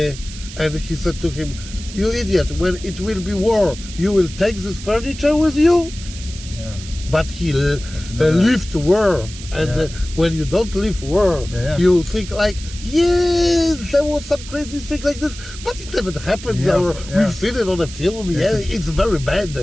he said to him, "You idiot! When it will be war, you will take this furniture with you." But he lived war, and when you don't live war, you think like, yes, there was some crazy thing like this, but it never happened, or we've seen it on a film. It's very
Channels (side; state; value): right; noise; hiss, 14 dB below the sound